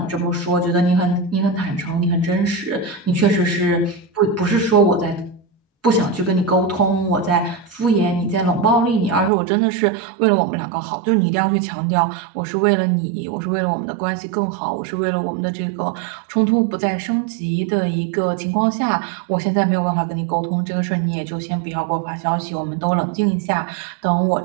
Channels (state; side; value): drops out; left; at 9.3 s